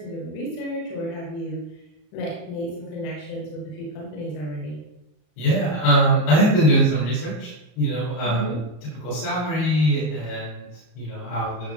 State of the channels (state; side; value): late; right; 33 ms